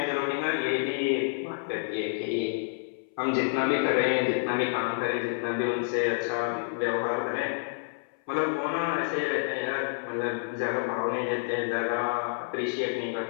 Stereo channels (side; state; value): right; silent; 59 dB below the other